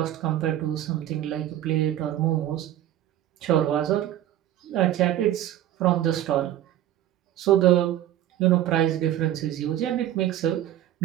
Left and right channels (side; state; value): left; quieter; 12.6 dB